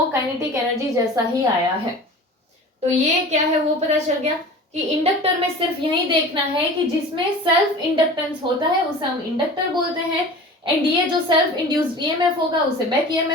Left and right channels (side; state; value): both; normal; correlation 0.38